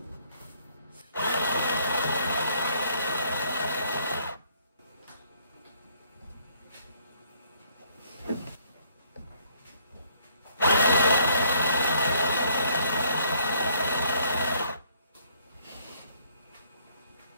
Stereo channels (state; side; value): inverted; both; correlation -0.65